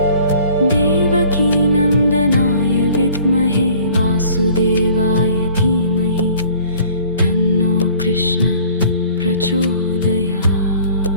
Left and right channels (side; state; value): both; inverted; correlation -0.52